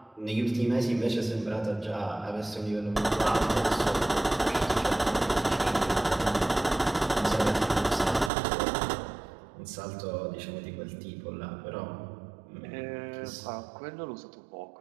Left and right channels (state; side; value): drops out; left; at 8.3 s